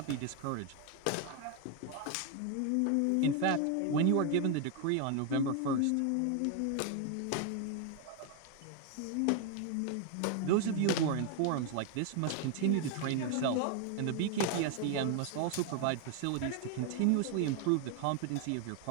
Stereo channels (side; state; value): both; different; correlation 0.01